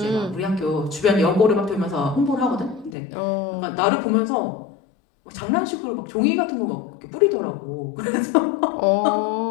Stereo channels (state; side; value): drops out; right; at 3.0 s